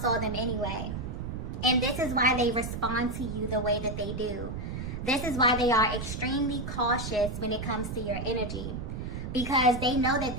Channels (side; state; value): right; noise; rumble, 6 dB below the sound